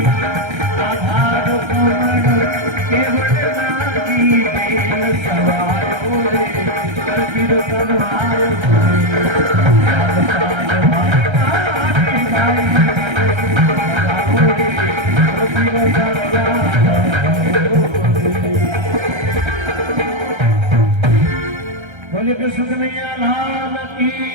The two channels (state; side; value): late; left; 1.3 ms